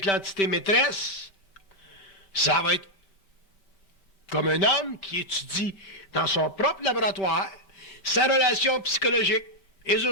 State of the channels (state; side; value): late; right; 5.2 ms